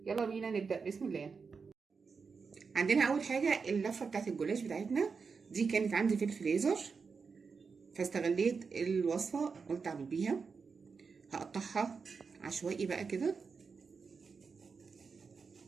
يلا بينا نبدا بسم الله. عندنا اول حاجه اللفه بتاعت الجلاش بتاعتنا، دي كانت عندي في الفريزر فاستغليت الوصفه قلت اعمل بيها. هقطعها عشوائي بقى كده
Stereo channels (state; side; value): quieter; left; 5.2 dB